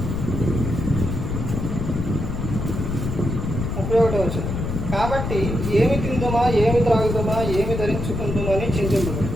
31వ వచనం. కాబట్టి ఏమి తిందుమా, ఏమి త్రాగుదామా, ఏమి ధరించుకుందామా అని చింతించదు.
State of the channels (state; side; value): noise; left; rumble, 3 dB below the sound